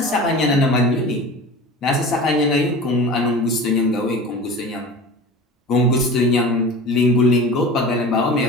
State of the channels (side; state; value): both; normal; correlation 0.36